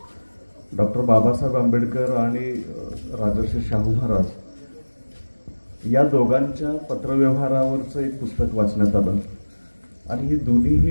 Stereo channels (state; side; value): inverted; both; correlation -1.00